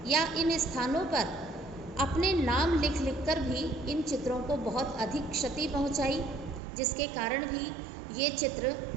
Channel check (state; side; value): drops out; left; at 6.6 s